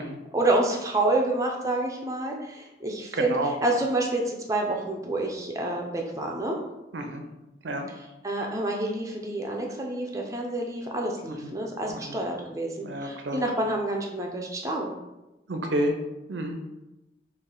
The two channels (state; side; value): normal; both; correlation 0.41